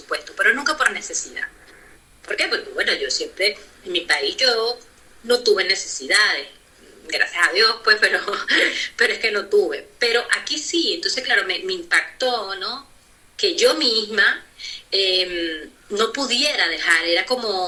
pero nunca por necesidad. ¿Por qué? Porque, bueno, yo siempre, en mi país yo no tuve necesidades, gracias a Dios, pues, pero es que no tuve. Pero aquí sí, entonces, claro, me impactó, ¿no? Que yo misma no pudiera dejar, era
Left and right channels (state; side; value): identical; both; correlation 1.00